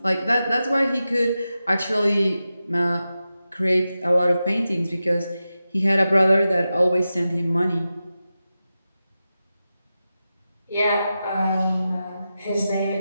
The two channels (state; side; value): inverted; both; correlation -0.92